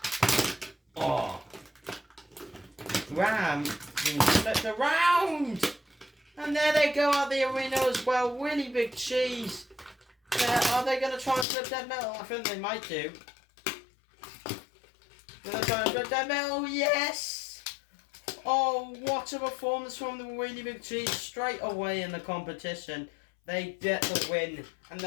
Oh. Ram being flipped around. And there they go out the arena as well. Really Big Cheese. Are they going to try and flip Dead Metal? I think they might do. Going to try and flip Dead Metal. Yes! Oh, what a performance from the Really Big Cheese straight away in the competition. They get the win. And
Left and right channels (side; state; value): right; drops out; at 11.5 s